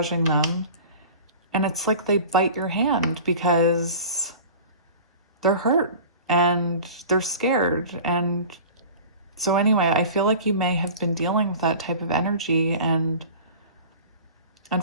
them. And it's like they bite your hand because they're hurt and they're scared. And so anyway, I feel like you may have been dealing with that type of energy, and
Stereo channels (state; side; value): inverted; both; correlation -0.39